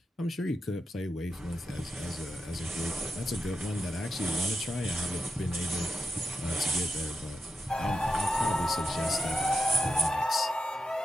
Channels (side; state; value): both; normal; correlation 0.90